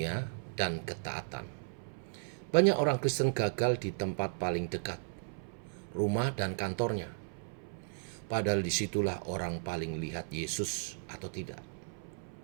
dan ketaatan. Banyak orang Kristen gagal di tempat paling dekat, rumah dan kantornya. Padahal disitulah orang paling lihat Yesus atau tidak.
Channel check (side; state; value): left; silent; 54 dB below the other